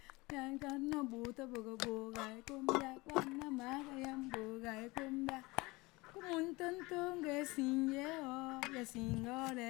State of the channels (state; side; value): quieter; right; 23.1 dB